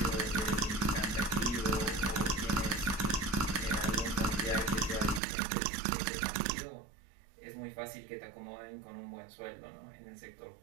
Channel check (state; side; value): drops out; left; at 5.2 s